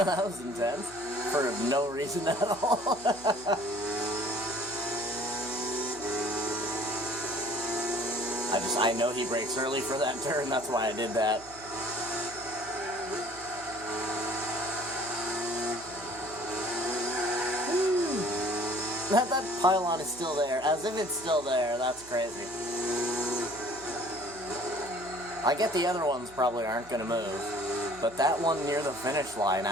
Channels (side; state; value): right; noise; hum, 22 dB below the sound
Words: was intense. For no reason at all. I know he brakes early for that turn, that's why I did that. That pylon is still there, as if it's still there. That's crazy. I get the other ones probably aren't going to move, but that one near the finish line,